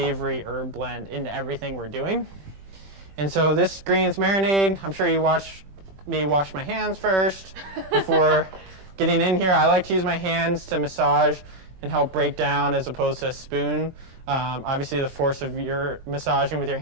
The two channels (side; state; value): left; late; 9.3 ms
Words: herb blend into everything we're doing. And so this greens marinade, I'm sure you watched me wash my hands first before getting in here. I like to use my hands to massage and help break down as opposed to a spoon. Obviously, the force of your massaging with your